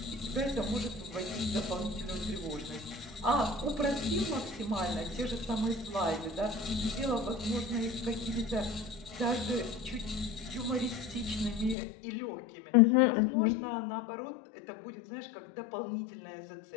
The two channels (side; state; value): right; drops out; at 11.8 s